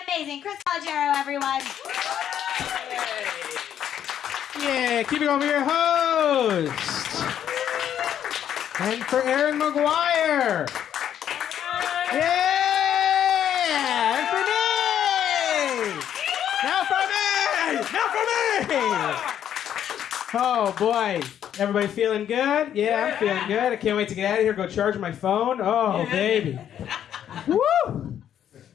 amazing Chris Calogero, everyone. Yeah, keep it going for your host. And for Aaron McGuire. Yeah! And for me! Now for me! Now for me! Oh, boy. Everybody feeling good? Yeah, I'm feeling good. I can't wait to get out of here, go charge my phone. Oh, baby. Woo!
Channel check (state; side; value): quieter; right; 9.9 dB